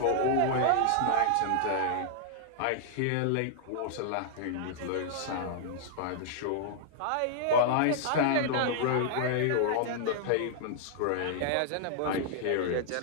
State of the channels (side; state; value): both; different; correlation -0.01